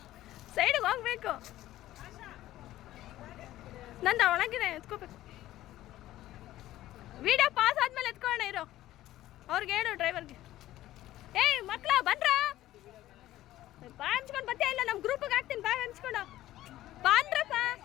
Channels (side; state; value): right; quieter; 14.7 dB